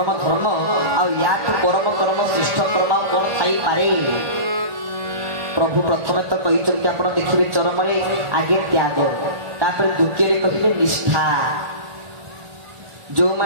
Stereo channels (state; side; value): late; left; 1.4 ms